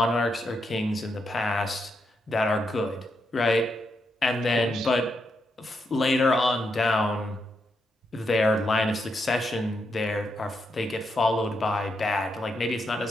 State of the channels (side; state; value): both; normal; correlation 0.81